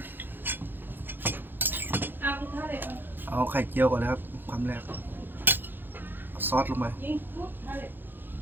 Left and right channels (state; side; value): late; left; 0.096 ms